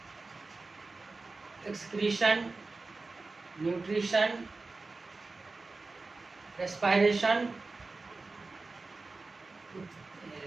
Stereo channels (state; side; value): quieter; left; 3.6 dB